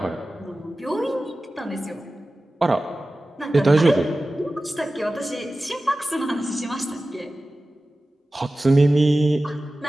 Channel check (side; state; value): both; normal; correlation 0.96